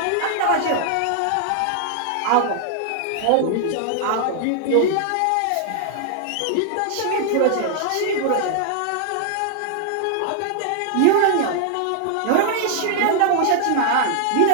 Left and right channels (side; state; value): both; different; correlation 0.00